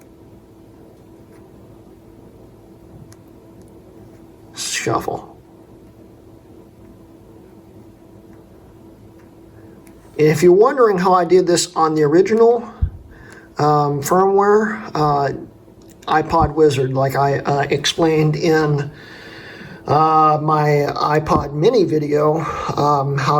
Shuffle. If you're wondering how I did this on the original firmware, iPod Wizard, like I explained in my iPod mini video,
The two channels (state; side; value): identical; both; correlation 1.00